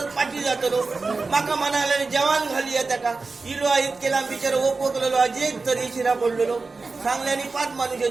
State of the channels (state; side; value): quieter; left; 4.0 dB